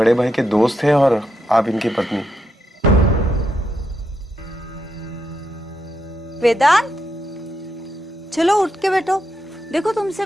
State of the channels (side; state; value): both; normal; correlation 0.82